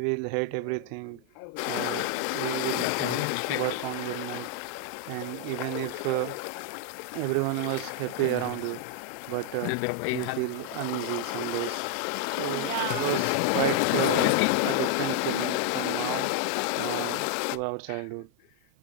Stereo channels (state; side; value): different; both; correlation 0.00